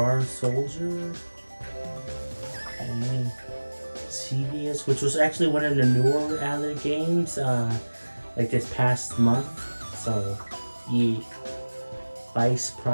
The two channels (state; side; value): inverted; both; correlation -1.00